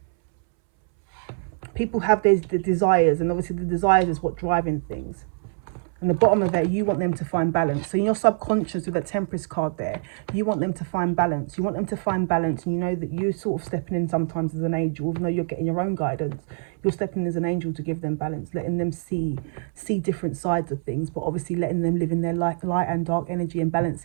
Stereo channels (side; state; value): left; silent; 62 dB below the other